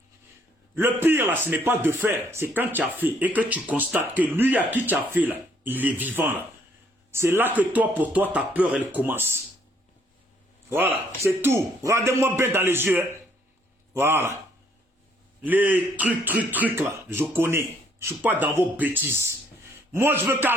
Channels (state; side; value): normal; both; correlation 0.66